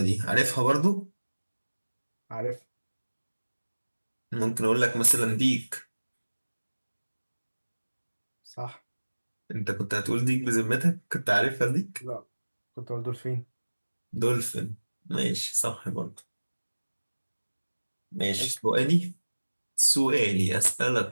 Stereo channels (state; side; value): inverted; both; correlation -1.00